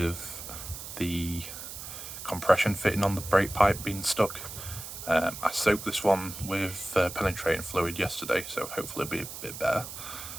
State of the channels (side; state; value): right; noise; hiss, 10 dB below the sound